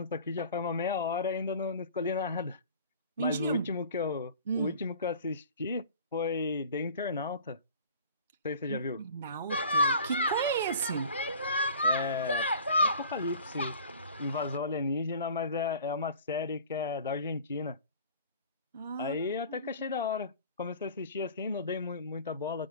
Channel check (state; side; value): inverted; both; correlation -0.45